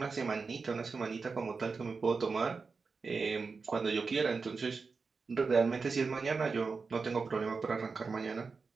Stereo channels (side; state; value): left; quieter; 4.7 dB